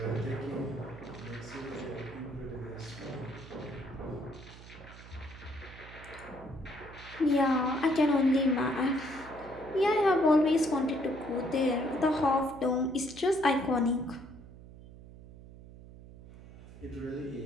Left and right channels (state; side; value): noise; right; hum, 17 dB below the sound